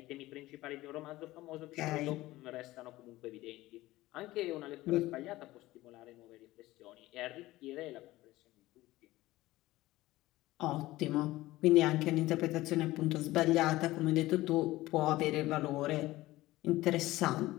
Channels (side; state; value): right; quieter; 17.6 dB